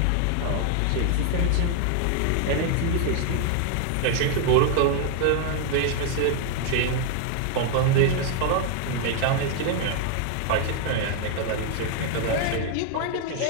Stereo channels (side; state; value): both; different; correlation 0.00